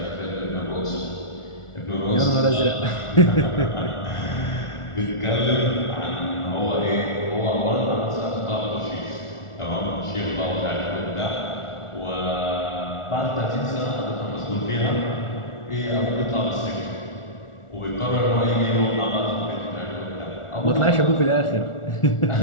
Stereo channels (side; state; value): right; late; 1.4 ms